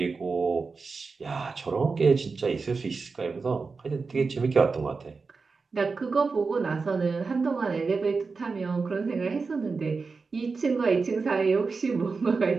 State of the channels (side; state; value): left; quieter; 4.5 dB